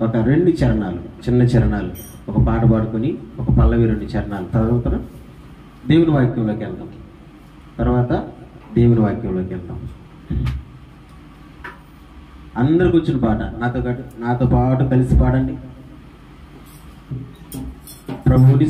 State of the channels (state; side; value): identical; both; correlation 1.00